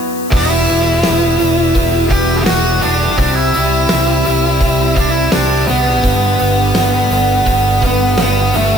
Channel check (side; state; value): left; noise; hiss, 15 dB below the sound